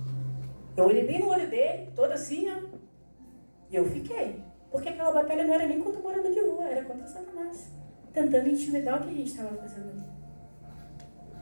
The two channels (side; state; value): both; inverted; correlation -1.00